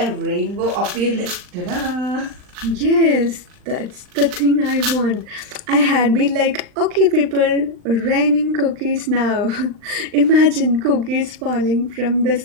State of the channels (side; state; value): left; late; 39 ms